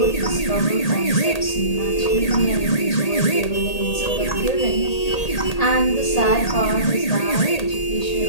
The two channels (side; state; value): right; late; 1.8 ms